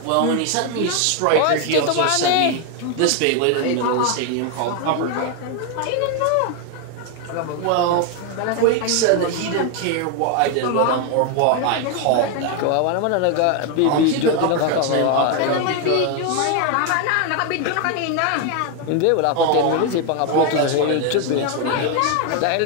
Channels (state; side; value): different; both; correlation 0.01